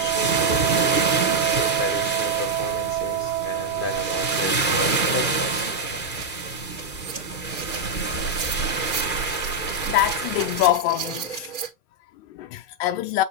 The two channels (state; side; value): late; right; 2.4 ms